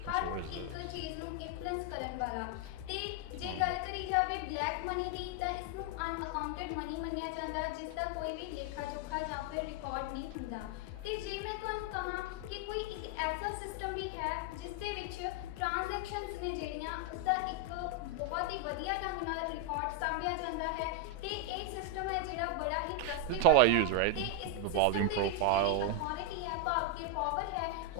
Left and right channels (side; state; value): both; different; correlation 0.01